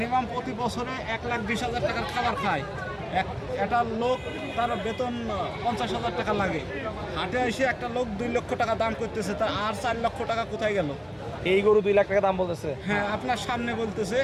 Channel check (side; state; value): both; identical; correlation 1.00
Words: প্রতি বছরে 1,20,000 টাকার খাবার খায়। একটা লোক তার বেতন 50,000 টাকা লাগে, হাটে এসে একটা লোক 2 লক্ষ টাকা দাম করতেছে, তার আর 4 লক্ষ টাকা কোথায় গেল? এই গরু 2 লাখ টাকা দাম বলতেছে। হ্যাঁ, আপনার সামনে বলতেছে,